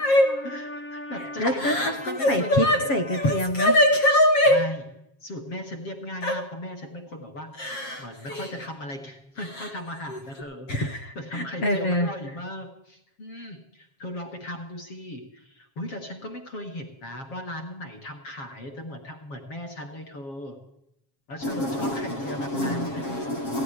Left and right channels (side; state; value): right; late; 7.4 ms